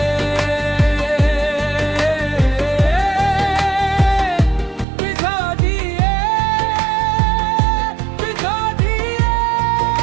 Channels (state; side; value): drops out; left; at 4.9 s